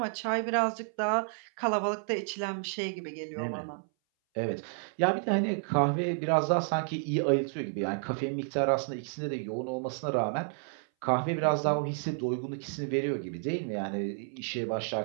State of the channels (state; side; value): silent; left; 57 dB below the other